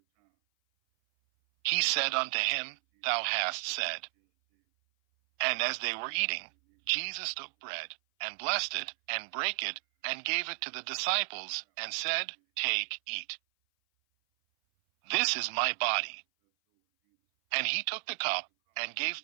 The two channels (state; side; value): silent; left; 56 dB below the other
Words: He said unto him, Thou hast said. And as they were eating, Jesus took bread, and blessed it, and brake it, and gave it to the disciples, and said, Take, eat. This is my body. And he took the cup, and gave